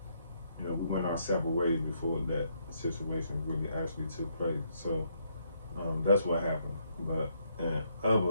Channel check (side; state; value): both; inverted; correlation -0.73